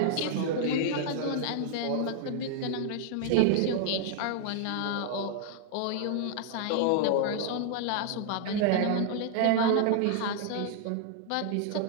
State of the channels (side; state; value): both; different; correlation -0.01